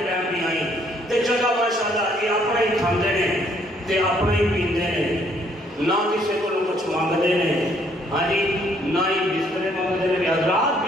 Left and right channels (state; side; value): normal; both; correlation 0.66